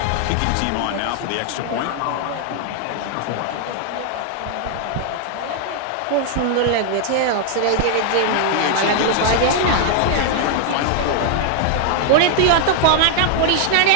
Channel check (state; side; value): different; both; correlation 0.00